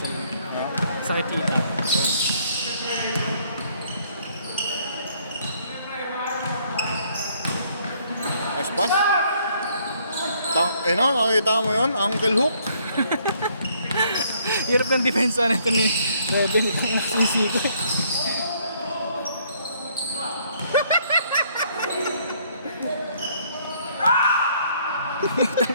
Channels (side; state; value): both; inverted; correlation -0.66